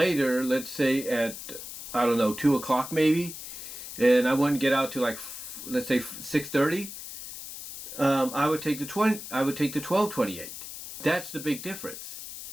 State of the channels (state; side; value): noise; left; hiss, 11 dB below the sound